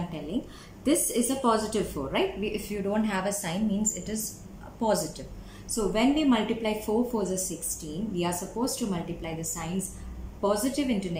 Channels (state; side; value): identical; both; correlation 1.00